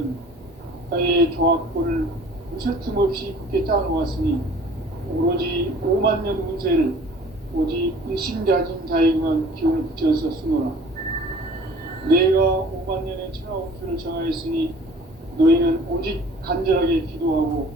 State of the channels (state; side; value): normal; both; correlation 0.49